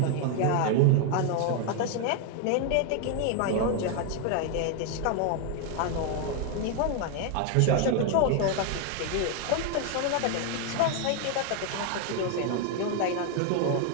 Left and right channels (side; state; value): both; different; correlation 0.01